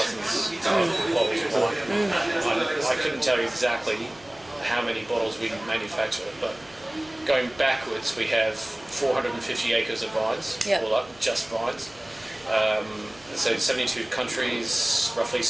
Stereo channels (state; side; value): noise; right; hum, 26 dB below the sound